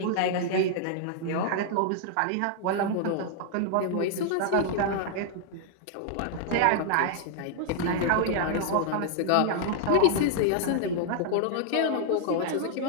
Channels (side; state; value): both; different; correlation -0.01